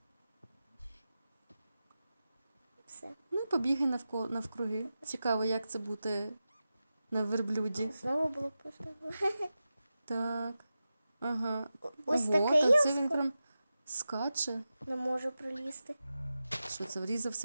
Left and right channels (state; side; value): inverted; both; correlation -0.93